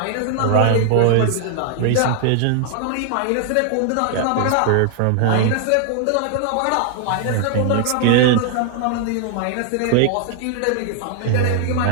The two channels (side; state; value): both; different; correlation 0.00